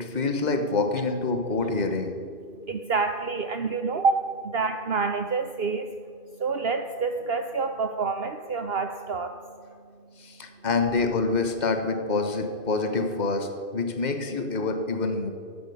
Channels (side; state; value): left; late; 2.5 ms